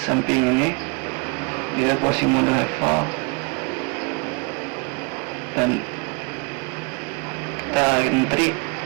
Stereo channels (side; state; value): left; quieter; 29.9 dB